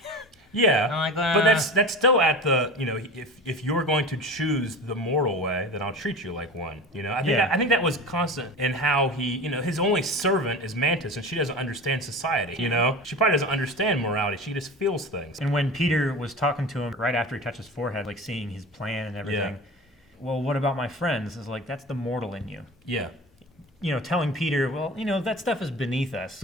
Yeah, I'm like, but that's still at the, you know, if you're going to choose the mortal way, then I'll treat you like one. You know, I think that was constant in how he, you know, his only servant is Mantis, and she doesn't understand society. You know, she probably doesn't understand morality. She just feels things. And when Peter was talking to him right after he touched his forehead, like seeing his plan and everything, well, what about my friends? It's like, that's the mortal in you. Yeah, You know, telling Peter, well, you know, that stuff is beneath us.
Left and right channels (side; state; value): both; normal; correlation 0.33